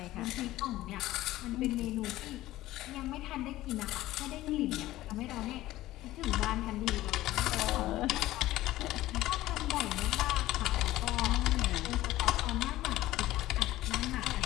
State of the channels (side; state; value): right; quieter; 16.0 dB